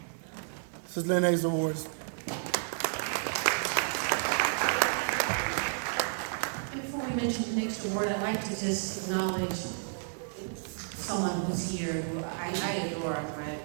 This is Lynn Hayes Awards. And before we mention the next award, I'd like to just acknowledge someone who's here who I adore,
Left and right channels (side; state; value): left; silent; digital silence